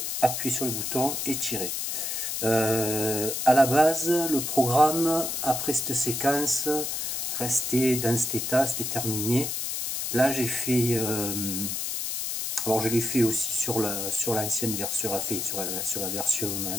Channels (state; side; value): noise; left; hiss, 2 dB below the sound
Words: appuyer sur le bouton et tirer. À la base, le programme, après cette séquence, restait dans cet état, c'était terminé. Là j'ai fait... alors je l'ai fait aussi sur l'ancienne version, sur la version